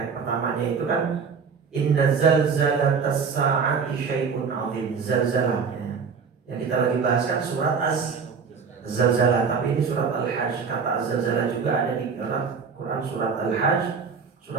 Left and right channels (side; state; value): left; quieter; 5.7 dB